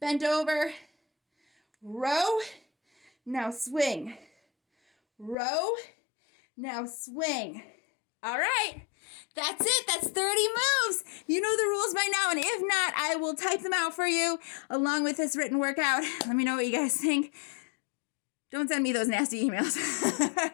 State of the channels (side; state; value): right; drops out; at 5.4 s